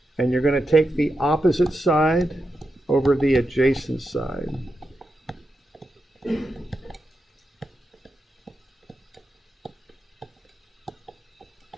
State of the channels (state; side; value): normal; both; correlation 0.87